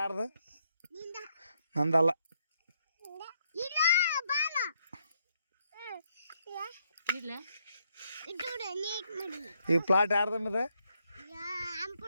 ನಂದಲ್ಲ ಈ ಪ್ಲಾಟ್ ಯಾರ್ದು ನಿಮ್ಮದು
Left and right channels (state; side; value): inverted; both; correlation -0.75